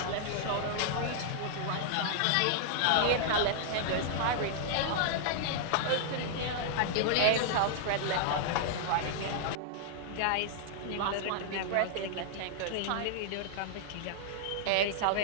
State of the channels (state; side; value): different; both; correlation -0.01